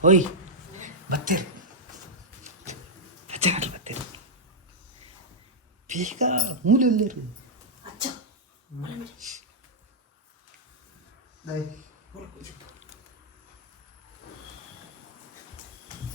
ಓಯ್ ಬತ್ತೀರಿ, ಅಜ್ಜನಲ್ಲಿ ಬತ್ತೀರಿ, ಬೇಗ ಮೂಲೆಯಲ್ಲಿರು ಅಜ್ಜ.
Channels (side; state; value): both; normal; correlation -0.07